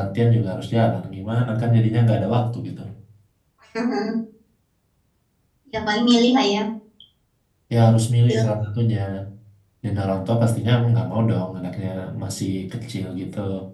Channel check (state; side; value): identical; both; correlation 1.00